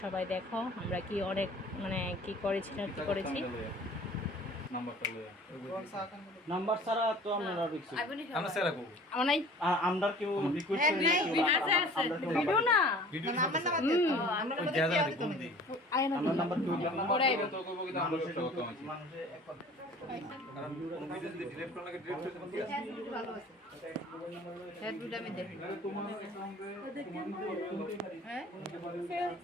সবাই দেখো আমরা কি অনেক মানে কি করেছিলাম, কি করেছি। নাম্বার ছাড়া তো আমরা রিকোয়েস্ট আমরা সেরা করব নাই আমরা কেউ রিকোয়েস্ট করি আছে ভিডিও না ভিডিও আমরা জায়গা কোন দি আমরা নাম্বার কেউ পড়াইব তো কইব কি আমরা সব তো আছে কারণ কোন ভিডিও যদি ডিলিট করা লাগে ডিলিট করতে পারি ভালো আছে হেড ভিডিও আমি দেখি তোমার অ্যাকাউন্টে হ্যাঁ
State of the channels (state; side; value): normal; both; correlation 0.47